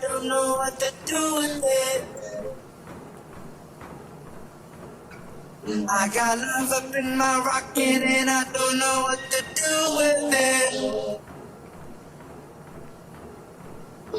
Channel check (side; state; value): both; identical; correlation 1.00